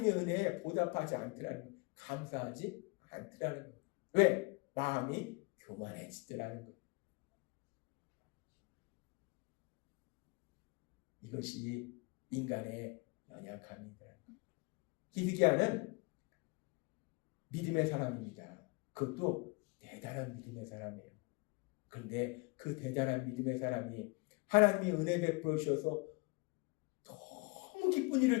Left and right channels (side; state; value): right; quieter; 28.7 dB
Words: 은혜에 보답하지 않더라는 거예요. 감사하지 않더라는 거예요. 왜? 마음이 교만해지더라는 거예요. 이것이 인간의 연약함이다. 히스기야는 믿음의 사람입니다. 그것도 대단한 믿음의 사람이에요. 그런데 그 대단한 믿음의 사람이 하나님이 은혜 베풀어 주셔서 너무 기쁜